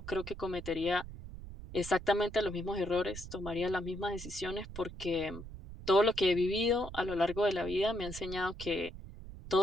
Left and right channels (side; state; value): right; noise; rumble, 12 dB below the sound